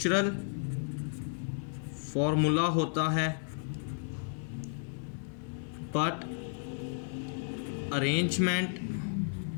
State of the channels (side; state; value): right; silent; 56 dB below the other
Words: फॉर्मूला होता है but arrangement